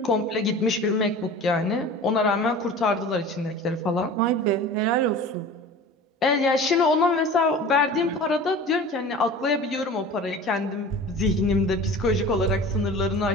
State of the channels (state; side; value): normal; both; correlation 0.38